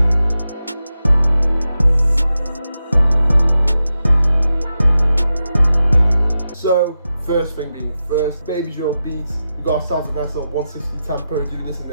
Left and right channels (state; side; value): inverted; both; correlation -0.90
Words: So, first thing being first, Babydrill beats. We got ourselves a nice little 160 tempo, doing this in